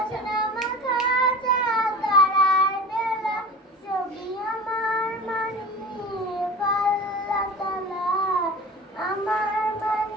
মাখা চাঁদ তারার বেলা। ছবি আমার মানিক আল্লাহ তাআলা, আমার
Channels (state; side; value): normal; both; correlation 0.35